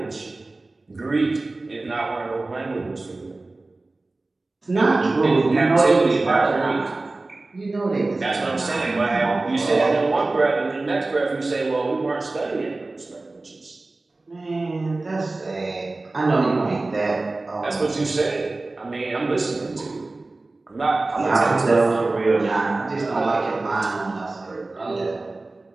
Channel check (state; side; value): quieter; left; 3.2 dB